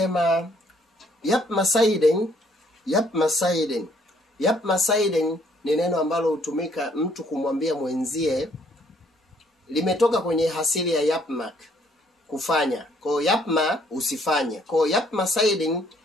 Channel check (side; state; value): both; normal; correlation 0.65